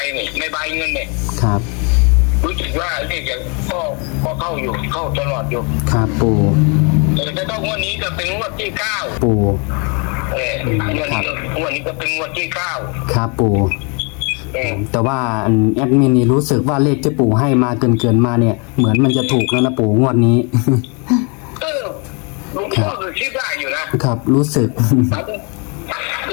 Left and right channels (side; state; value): right; quieter; 34.2 dB